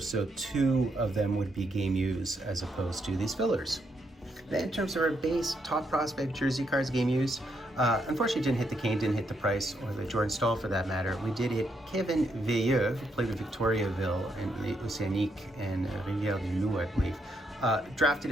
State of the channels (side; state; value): both; normal; correlation 0.77